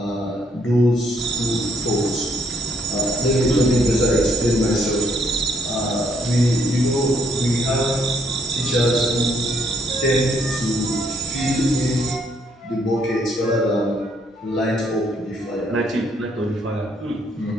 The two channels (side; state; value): both; normal; correlation 0.70